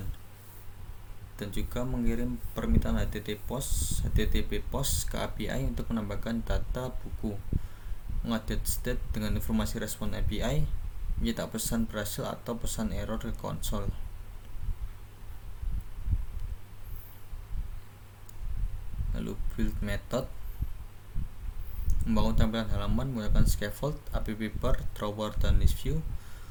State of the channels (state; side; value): identical; both; correlation 1.00